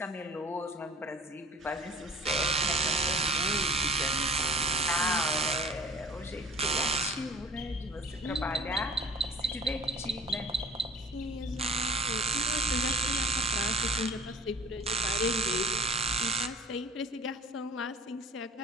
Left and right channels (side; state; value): both; normal; correlation 0.44